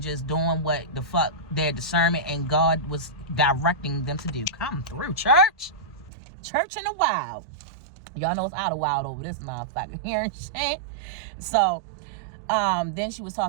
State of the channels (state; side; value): drops out; left; at 6.1 s